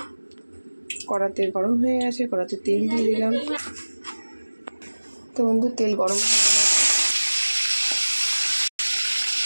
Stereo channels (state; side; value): inverted; both; correlation -1.00